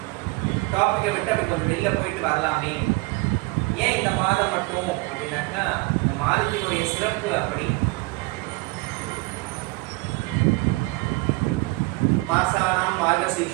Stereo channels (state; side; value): quieter; left; 23.9 dB